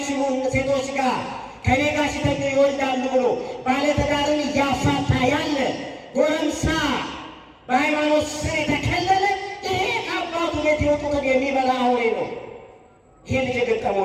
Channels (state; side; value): identical; both; correlation 1.00